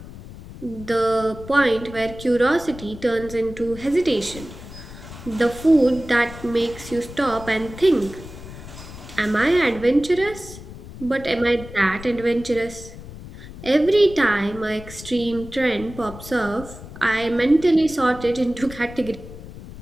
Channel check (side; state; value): left; noise; rumble, 15 dB below the sound